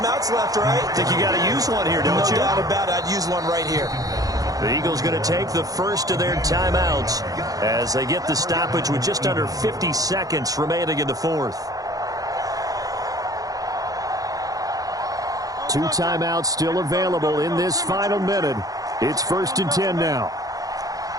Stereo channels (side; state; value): left; late; 0.17 ms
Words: left, right? Think you got to use one here, don't you? No doubt about it. I'd use one right here. The Eagles going to take the first of their timeouts as they get the stoppage with just under 50 seconds remaining in the fourth. 2 timeouts still available in this final minute. It's 1st and 10 now.